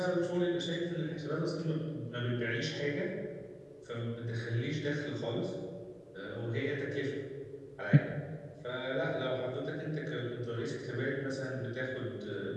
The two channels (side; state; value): both; identical; correlation 1.00